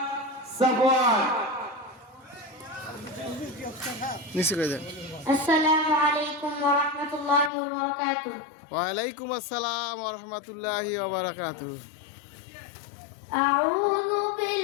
সাফওয়ান। আসসালামু আলাইকুম ওয়া রাহমাতুল্লাহি ওয়া বারাকাতুহু। ওয়া আলাইকুম আসসালাম ওয়া রাহমাতুল্লাহি ওয়া বারাকাতুহু। আউযু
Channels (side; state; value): right; drops out; at 7.5 s